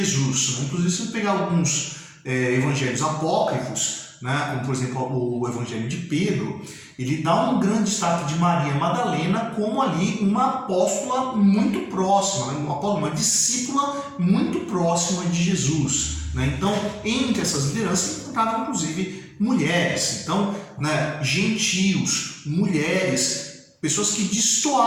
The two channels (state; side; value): identical; both; correlation 1.00